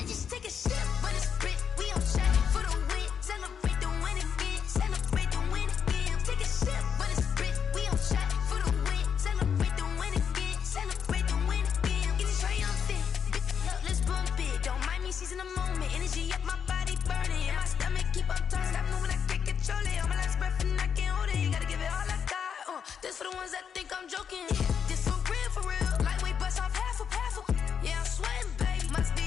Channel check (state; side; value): quieter; right; 7.3 dB